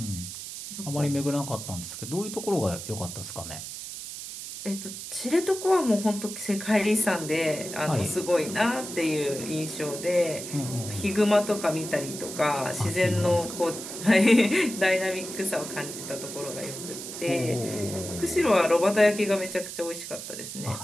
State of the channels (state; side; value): noise; right; hiss, 9 dB below the sound